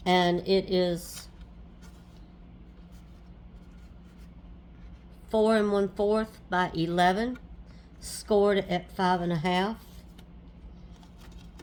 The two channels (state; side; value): identical; both; correlation 1.00